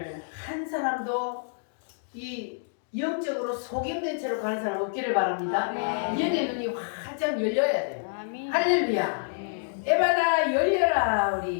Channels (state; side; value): silent; right; digital silence